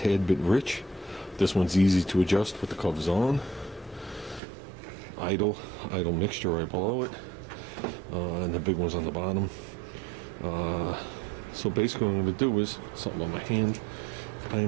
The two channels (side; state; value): left; drops out; at 4.4 s